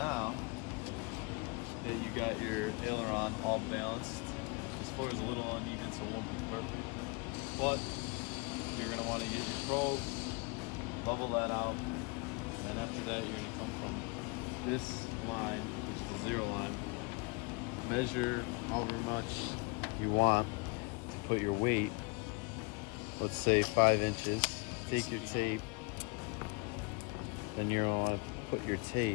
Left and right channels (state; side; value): quieter; right; 29.6 dB